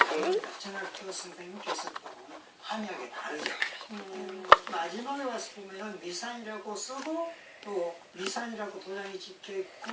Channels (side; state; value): both; identical; correlation 1.00